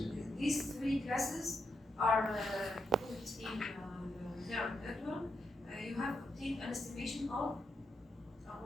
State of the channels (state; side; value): normal; both; correlation 0.82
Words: These three classes are put in neural network. You have obtained an estimation of